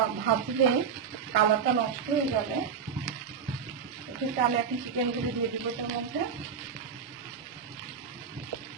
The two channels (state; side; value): quieter; left; 6.7 dB